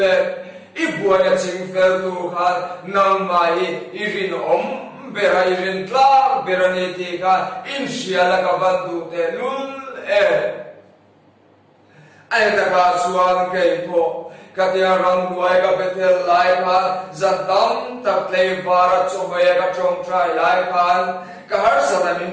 ibuwa na chingfel tu kan nang mai irin bera irin tla bera niti kan in siya na kabandu te lule ay nakasuan kay po katiya rang duay ka betel lai kan zantam taklay para chumaya ka chong try lai kan kahar sa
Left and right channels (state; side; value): identical; both; correlation 1.00